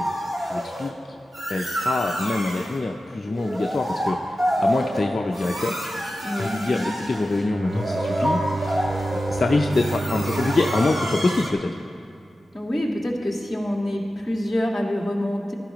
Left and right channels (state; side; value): normal; both; correlation 0.93